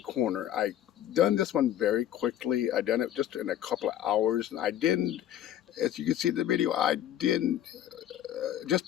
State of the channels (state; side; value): quieter; right; 11.4 dB